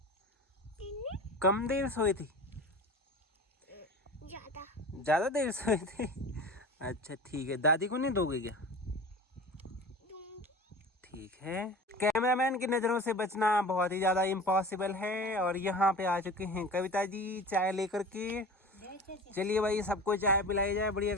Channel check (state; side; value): normal; both; correlation 0.36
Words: कम देर सोए थे? ज्यादा देर सोए थे? अच्छा ठीक है, दादी को नहीं दोगे क्या? ठीक है। कैमरामैन की नजरों से बचना बहुत ही ज्यादा इम्पॉसिबल है। और यहाँ पे आ चुके हैं कविता जी चाय लेकर के। चलिए भाई, सबको चाय पिलाई जाए बढ़िया